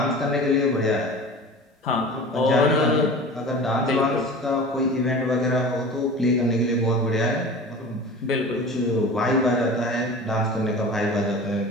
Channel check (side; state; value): both; normal; correlation 0.37